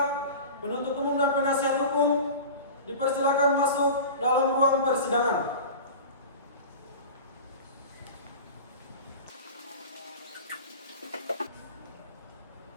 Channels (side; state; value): both; inverted; correlation -0.34